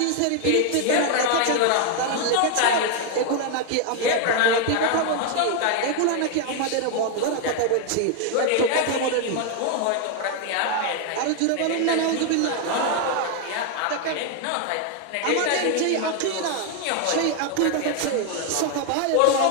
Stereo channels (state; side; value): different; both; correlation 0.00